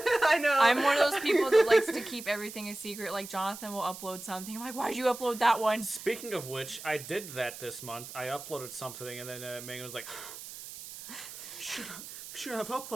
know. I'm one of those people that likes to keep everything a secret. Like, Jonathan will upload something. I'm like, why'd you upload that one? Speaking of which, I did that this month. I uploaded something, and then Megan was like, should have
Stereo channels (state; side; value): noise; right; hiss, 12 dB below the sound